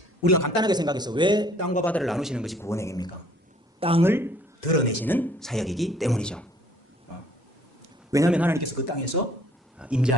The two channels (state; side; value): normal; both; correlation 0.58